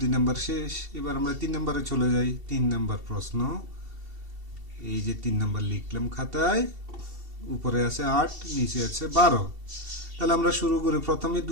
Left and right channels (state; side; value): late; left; 2.7 ms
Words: 2 নাম্বার শেষ। এবার আমরা 3 নাম্বারে চলে যাই। 3 নাম্বার প্রশ্ন, এই যে 3 নাম্বার লিখলাম খাতায়। উপরে আছে 8, নিচে আছে 12। তাহলে আমরা শুরু করি, প্রথমে